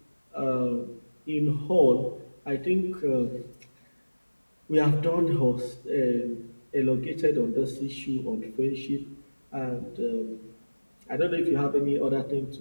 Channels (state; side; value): inverted; both; correlation -1.00